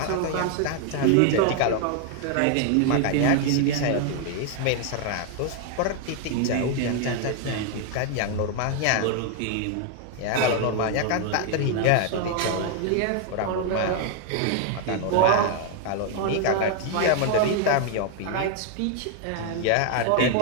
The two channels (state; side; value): different; both; correlation 0.00